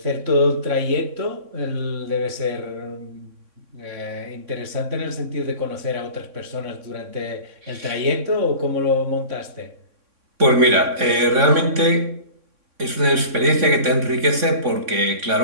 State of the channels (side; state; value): left; late; 3.6 ms